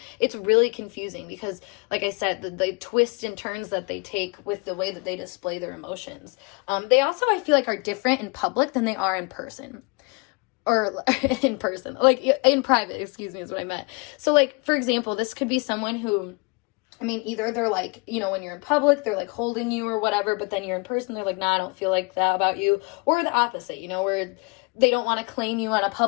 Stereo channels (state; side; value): quieter; right; 30.1 dB